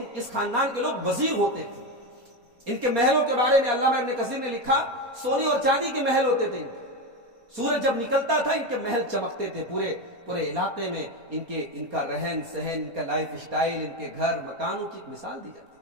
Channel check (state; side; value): late; left; 4.2 ms